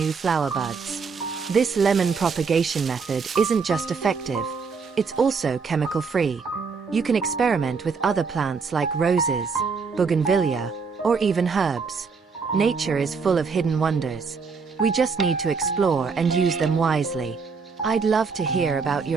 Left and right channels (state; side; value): quieter; left; 5.2 dB